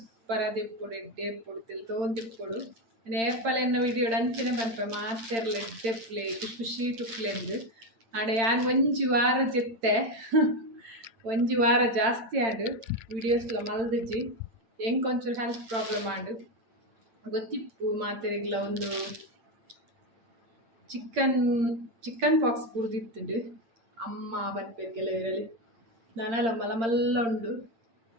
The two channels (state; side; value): late; left; 8.8 ms